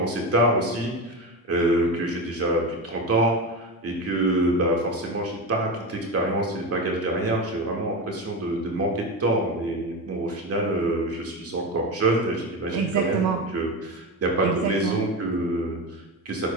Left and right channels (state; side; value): normal; both; correlation 0.20